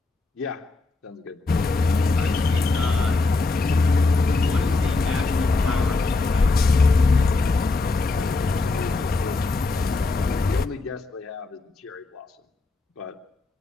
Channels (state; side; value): quieter; right; 3.5 dB